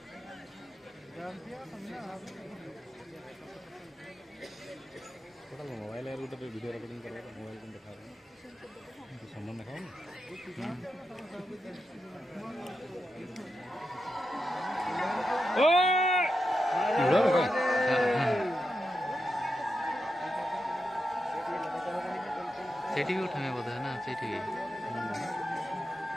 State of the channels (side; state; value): both; normal; correlation 0.88